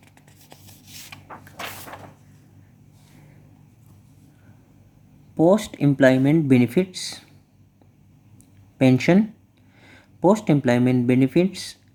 post-employment benefits, pension, post-employment benefits,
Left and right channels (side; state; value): both; identical; correlation 1.00